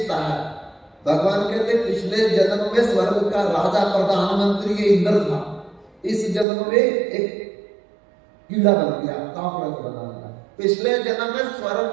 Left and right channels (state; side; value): drops out; left; at 6.5 s